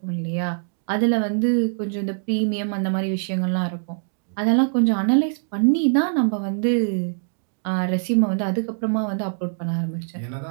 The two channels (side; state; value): left; silent; digital silence